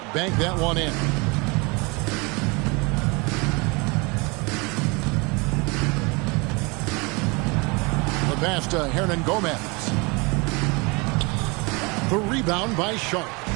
bank that one in. The pass to Hernan Gomez. The rebound by Sharp.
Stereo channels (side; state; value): left; quieter; 28.1 dB